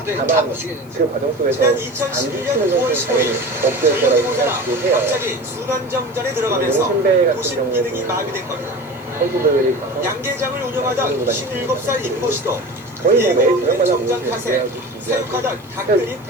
다만 그 과정 속에서 지난 안 2011년 지치는 9월 것은 당연히 15일 없을 거라고 모자라 생각이 해요. 갑자기 순환정전에 들어가면서 용신배 같은 도심 기능이 경우에도 마비된 겁니다. 선수들이 가서 양계장을 운영하던 17살 임모 씨도 거의 뭐 매일 예고 저녁마다 정장 보고 탓에 사육하던 닭들이 대국이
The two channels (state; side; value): noise; right; hiss, 28 dB below the sound